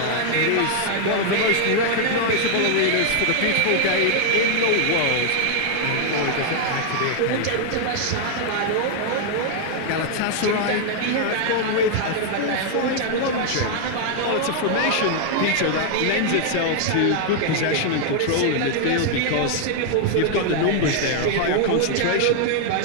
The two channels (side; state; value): both; different; correlation 0.00